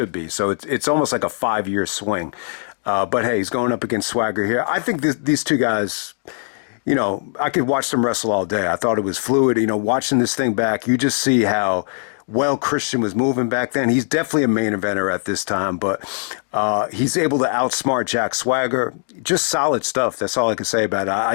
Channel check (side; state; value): right; silent; 63 dB below the other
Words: be. So it's almost like a 5-year swing. But hey, he's going up against Swagger here. I think these two guys, I could watch them wrestle all day. I thought it was fluid. Watching this thing back, you just see how well Christian was moving back then. He's definitely a main eventer at this time, but he's able to outsmart Jack Swagger. Just solid stuff. That's all I can say about it.